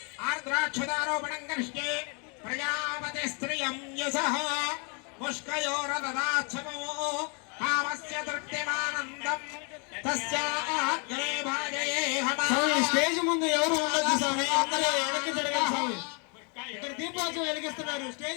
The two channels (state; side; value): quieter; right; 35.7 dB